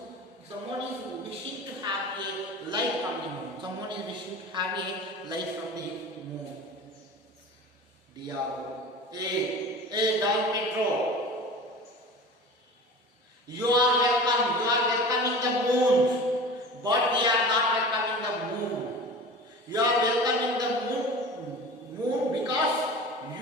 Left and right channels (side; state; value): both; normal; correlation 0.36